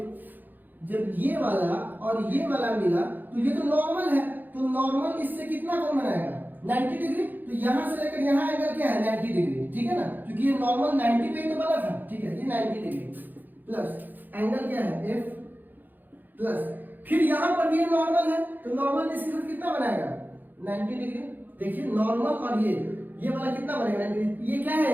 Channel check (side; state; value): left; late; 0.087 ms